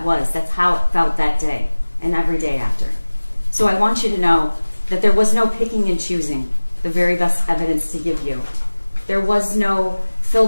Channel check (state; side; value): inverted; both; correlation -1.00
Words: was. That's how it felt that day and every day after. So I want you to know that there was no picking and choosing the very best evidence to give you. There was no